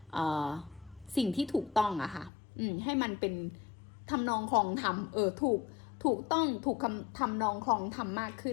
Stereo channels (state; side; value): drops out; right; at 2.3 s